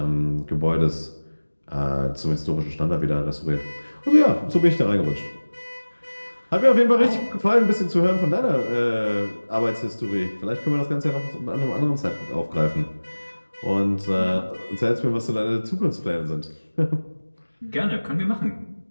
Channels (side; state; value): both; inverted; correlation -1.00